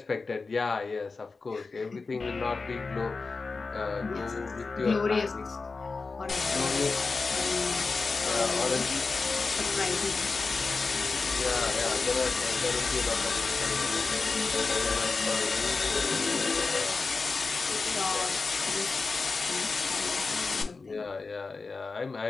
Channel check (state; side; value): quieter; right; 4.1 dB